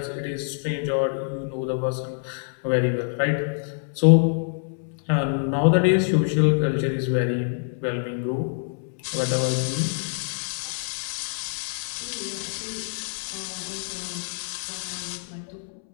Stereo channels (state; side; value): silent; right; 61 dB below the other